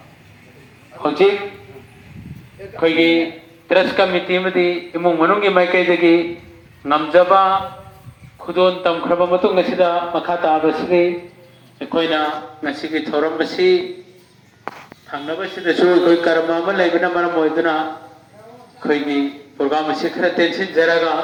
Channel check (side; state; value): both; identical; correlation 1.00